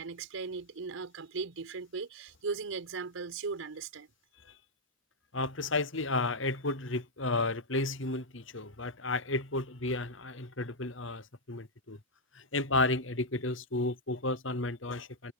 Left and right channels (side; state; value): both; normal; correlation -0.04